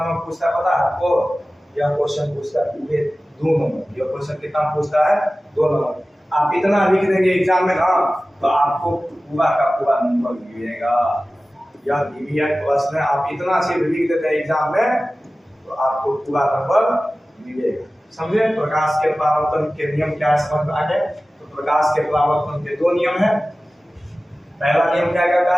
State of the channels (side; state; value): both; normal; correlation 0.96